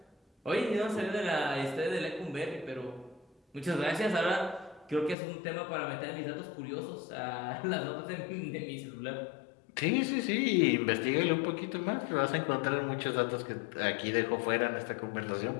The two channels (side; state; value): right; drops out; at 5.2 s